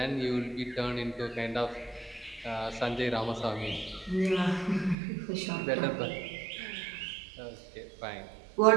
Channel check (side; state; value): left; drops out; at 5.0 s